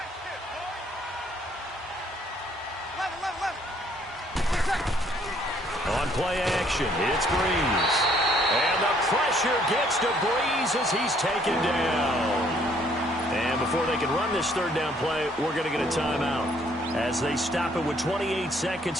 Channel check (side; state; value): both; normal; correlation 0.64